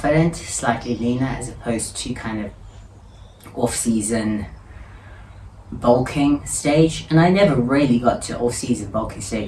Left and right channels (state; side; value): identical; both; correlation 1.00